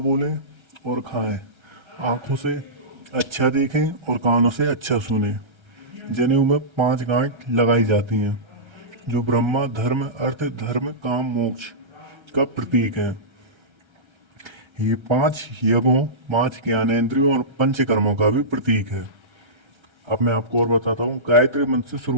और खाएं, आंखों से अच्छा देखें और कानों से अच्छा सुनें। जनेऊ में 5 गांठ लगाई जाती हैं, जो ब्रह्मा, धर्म, अर्थ, धर्म, काम, मोक्ष का प्रतीक है। ये 5 यज्ञों, 5 ज्ञानेंद्रियों और पंचकर्मों का भी प्रतीक है। अब मैं आपको और बताता हूँ। गायत्री मंत्र से शुरू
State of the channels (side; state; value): left; late; 1.3 ms